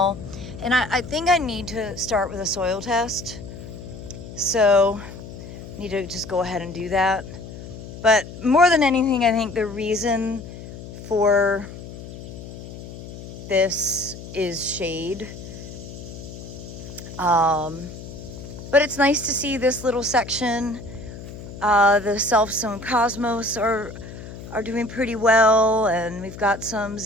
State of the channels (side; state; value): left; noise; hum, 13 dB below the sound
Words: And I think I need to start with a soil test. So I need to just go ahead and do that. But more than anything, I think the reason for this is shade. But it's nice to see this little section. The self-sown cosmos are doing pretty well, and we've got some